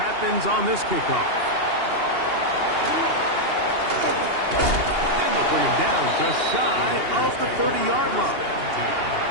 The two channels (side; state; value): left; late; 2.8 ms